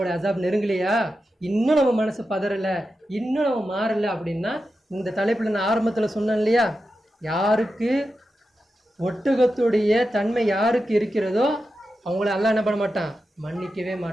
அசாப் நெருங்கலையா? இன்னும் நம்ம மனசு பதறலை, இன்னும் நம்ம மாறலை அப்படின்னா, இந்த தலைப்பில் நான் ஆரம்பத்தில் சொன்னேன் இல்லையா, யாருக்கு ஒட்டகத்துடைய தன்மை யாருக்கு இருக்கிறதோ அவங்கள அல்லாஹ் என்ன பண்ண மாட்டான்? மன்னிக்கவே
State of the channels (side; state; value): both; normal; correlation 0.90